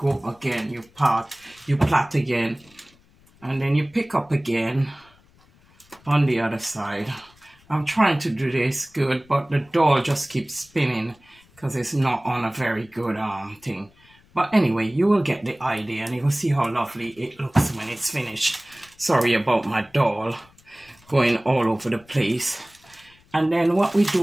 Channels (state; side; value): noise; left; rumble, 29 dB below the sound